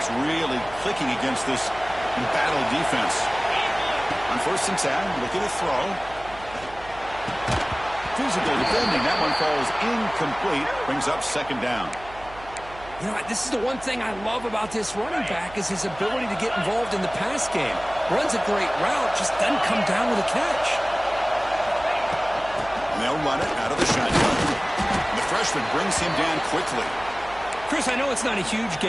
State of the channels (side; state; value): right; noise; hum, 18 dB below the sound